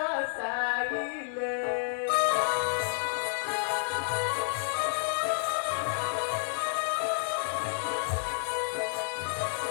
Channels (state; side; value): silent; right; 58 dB below the other